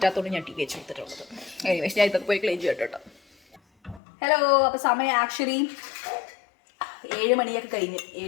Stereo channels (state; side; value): drops out; right; at 4.0 s